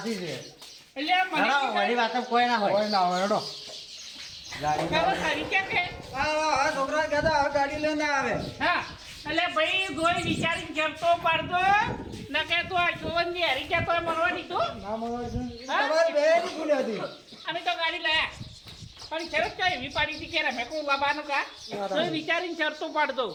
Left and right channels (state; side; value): identical; both; correlation 1.00